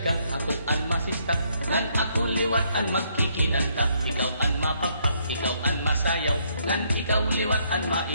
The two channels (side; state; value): both; inverted; correlation -0.71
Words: ka, ako an masista, ngan ako liwat an magkikinanta. Ikaw an mapapak, ikaw an masayaw, ngan ikaw liwat an